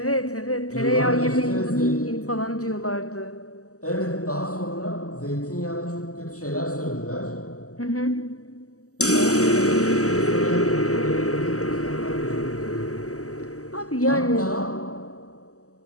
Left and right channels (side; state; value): right; late; 0.66 ms